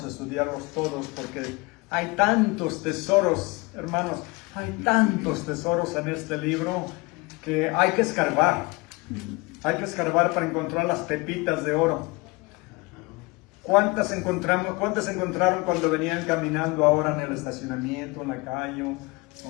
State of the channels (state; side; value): quieter; right; 25.4 dB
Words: a estudiarlos todos porque hay tantos tesoros, hermanos, hay tantos tesoros en este libro que hay que escarbar. Hay que escarbar para encontrar las pepitas de oro. ¿Cuántas encontraron cuando venían caminando ahora en el estacionamiento, en la calle?